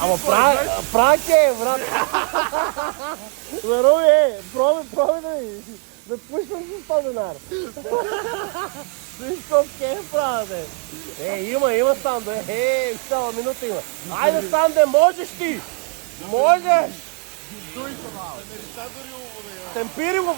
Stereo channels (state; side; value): quieter; left; 38.7 dB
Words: Ама прак е, брат. Здорови, пробай да пуснем с 100 денара. Виж колко е правя, бе. Има Санде. Цяла минута има. Айде, Санде, можеш ти! Можеш! Темпири го,